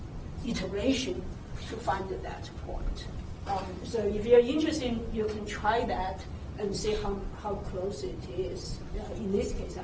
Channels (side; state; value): both; identical; correlation 1.00